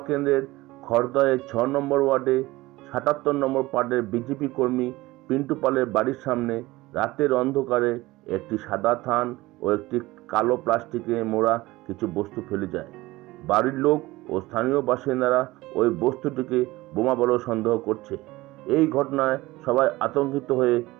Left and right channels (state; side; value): quieter; left; 19.4 dB